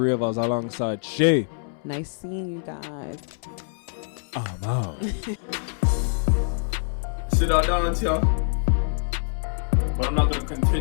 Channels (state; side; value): silent; right; 62 dB below the other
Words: of us alongside Shay. Nice seeing you guys. I'm out. Sit down and tell. But I'm not going to